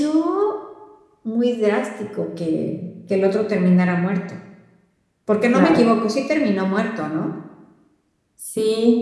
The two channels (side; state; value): both; identical; correlation 1.00